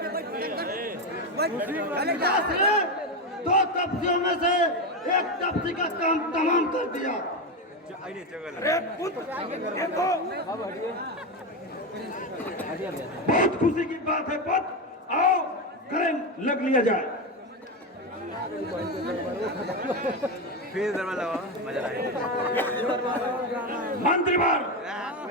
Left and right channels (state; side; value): normal; both; correlation 0.13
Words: पिताश्री, 2 तपसियों में से एक तपसी का काम तमाम कर दिया। बहुत खुशी की बात है पुत्र, आओ करें लग लिया जाए। फिर दरबार लगाओ, मजा आएगा। मंत्रीवर